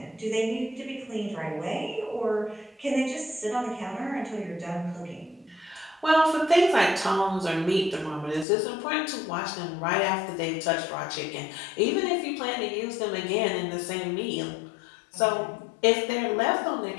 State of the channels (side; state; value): right; drops out; at 8.5 s